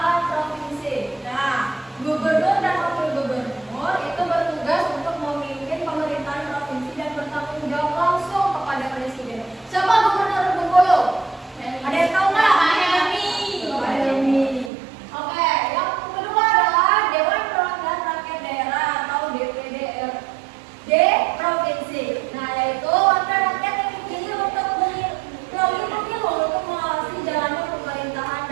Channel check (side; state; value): left; drops out; at 14.7 s